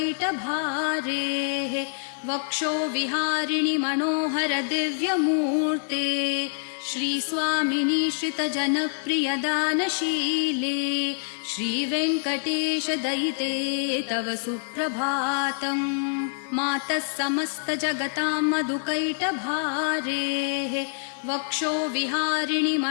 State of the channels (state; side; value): silent; right; digital silence